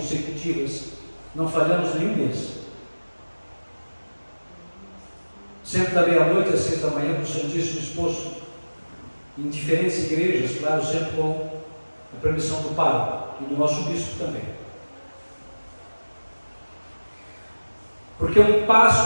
não falhamos nenhum mês. Sempre da meia-noite às 6 da manhã, para o Santíssimo exposto em diferentes igrejas, claro, sempre com a permissão do pároco e do nosso bispo também. Porque é um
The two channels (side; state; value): both; inverted; correlation -1.00